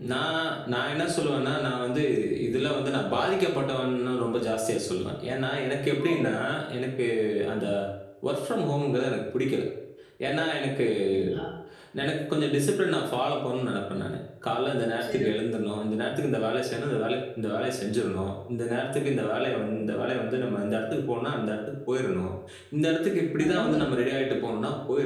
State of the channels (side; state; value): both; identical; correlation 1.00